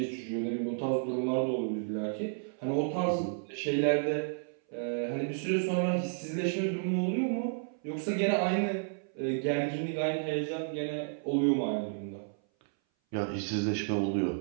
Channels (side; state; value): left; silent; 57 dB below the other